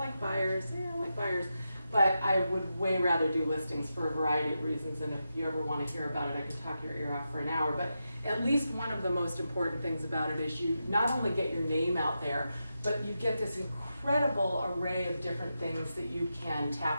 buyers, but I would way rather do listings for a variety of reasons. And if you ever want to hear about it, I can talk your ear off for an hour. But at least one of the most important things about it is you not only get your name out there, but you get this incredible array of different things that you can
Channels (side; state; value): both; inverted; correlation -0.88